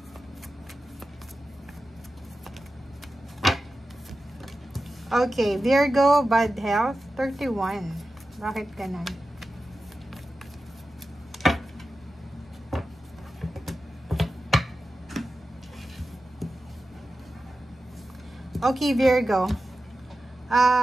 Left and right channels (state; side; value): normal; both; correlation 0.92